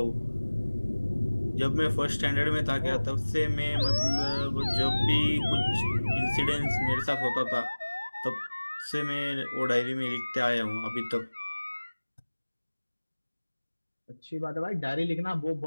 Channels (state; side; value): inverted; both; correlation -1.00